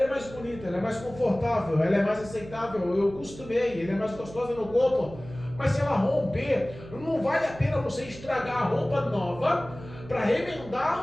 é mais bonita, ela é mais confortável, ela é mais aceitável, eu costumei, ela é mais gostosa no corpo. Mas se ela romper, não vale a pena você estragar a roupa nova para remendar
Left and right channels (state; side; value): noise; right; hum, 16 dB below the sound